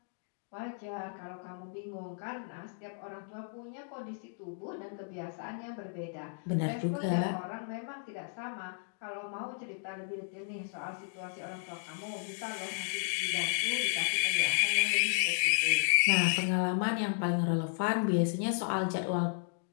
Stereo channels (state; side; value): silent; right; digital silence